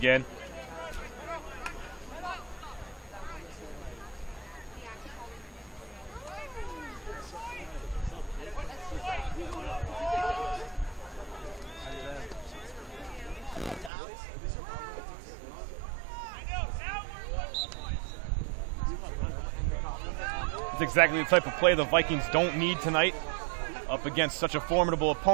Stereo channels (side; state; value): left; drops out; at 13.9 s